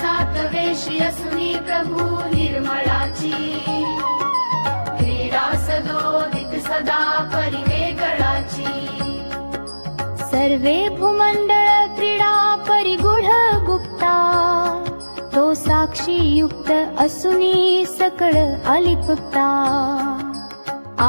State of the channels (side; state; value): both; inverted; correlation -1.00